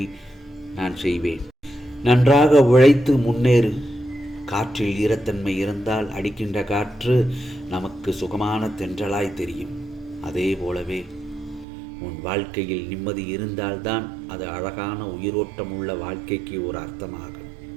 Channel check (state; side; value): drops out; left; at 11.7 s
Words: நான் செய்வேன். நன்றாக உழைத்து முன்னேறு. காற்றில் ஈரத்தன்மை இருந்தால் அடிக்கின்ற காற்று நமக்கு சுகமான தென்றலாய் தெரியும். அதே போலவே உன் வாழ்க்கையில் நிம்மதி இருந்தால்தான் அது அழகான உயிரோட்டம் உள்ள வாழ்க்கைக்கு ஒரு அர்த்தமாகும்.